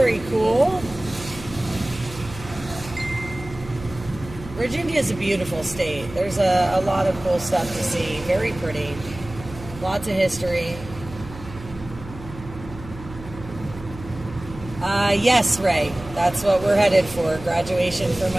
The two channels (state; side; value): noise; right; hum, 15 dB below the sound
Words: cool. Virginia is a beautiful state. There's a lot of cool stuff to see. Very pretty. Lots of history. Yes, Ray. That's what we're headed for. Graduation for